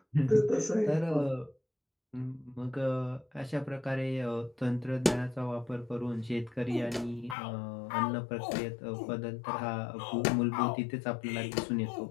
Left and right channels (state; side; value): drops out; right; at 7.4 s